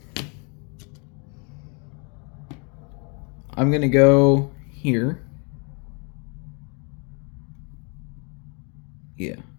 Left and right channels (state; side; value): quieter; right; 35.6 dB